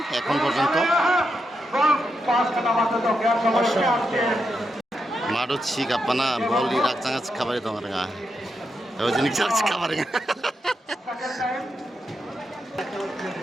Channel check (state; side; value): normal; both; correlation 0.84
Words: এখন পর্যন্ত। মাঠও ছিক আপানা বল রাখচাঙা খাবারে দং রেঙা ওই জিনিস খাবারে